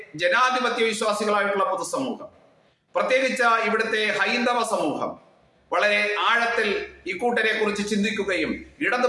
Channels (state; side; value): identical; both; correlation 1.00